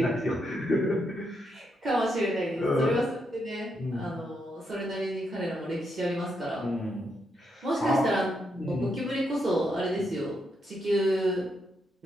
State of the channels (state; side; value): normal; both; correlation 0.80